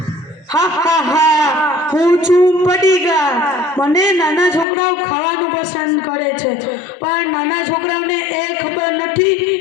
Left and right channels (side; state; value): right; drops out; at 4.7 s